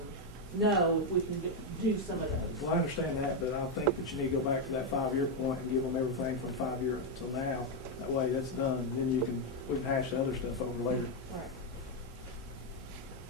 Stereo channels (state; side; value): normal; both; correlation 0.02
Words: know if we can do some of those. Well, I understand that, but I think that you need to go back to that 5-year point and give them everything from 5 years till now. That way that's done, and then we can hash the other stuff over later. All right.